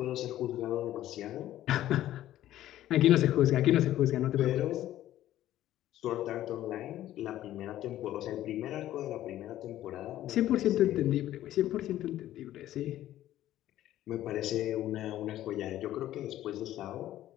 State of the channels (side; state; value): right; quieter; 13.4 dB